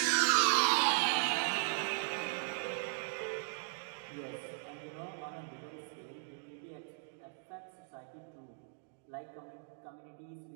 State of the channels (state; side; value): silent; left; digital silence